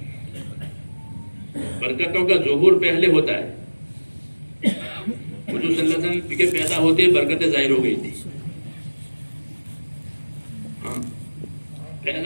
برکتوں کا ظہور پہلے ہوتا ہے. حضور صلی اللہ علیہ وسلم کے پیدا ہوتے برکتیں ظاہر ہو گئی تھی. ہاں،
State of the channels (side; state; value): both; inverted; correlation -1.00